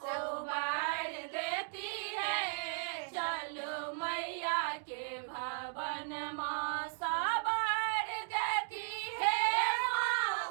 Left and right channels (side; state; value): left; silent; 54 dB below the other